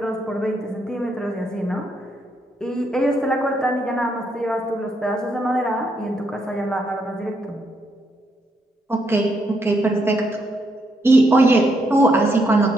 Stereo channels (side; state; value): both; normal; correlation 0.77